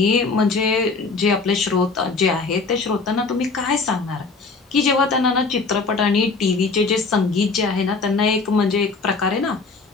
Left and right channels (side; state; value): right; quieter; 4.2 dB